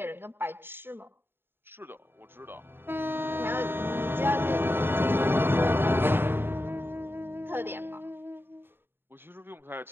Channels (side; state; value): left; late; 0.11 ms